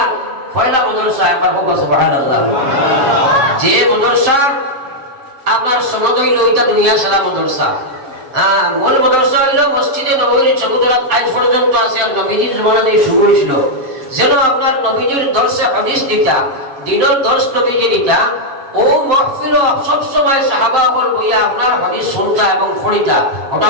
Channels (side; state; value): left; late; 7.2 ms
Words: পয়লা মাদ্রাসা একবার হোক সুবহানাল্লাহ। যে মাদ্রাসা আপনার সনদ হইল ওইটা দুনিয়া সারা মাদ্রাসা। মূল মাদ্রাসা হইল মসজিদে নববীর চৌধুরাত আজ পর্যন্ত আছে আর নবীজির জমানাতে শুরু হয়েছিল। যেন আপনার নবীজির দর্শে হাদিস দিতা দিনের দর্শ নবীজি দিতা ও মাহফিল সব সময় সাহাবা হল বইয়া আপনার হাদিস শুনতা এবং পড়িতা। ওটা